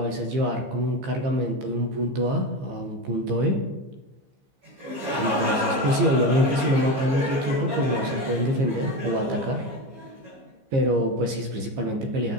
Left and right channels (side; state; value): left; late; 15 ms